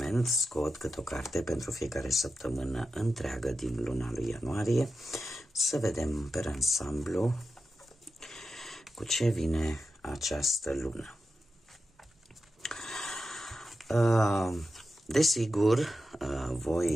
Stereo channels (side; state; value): both; normal; correlation 0.90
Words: scot câte o carte pentru fiecare săptămână întreagă din luna lui ianuarie, să vedem pe ansamblu cu ce vine această lună. Desigur,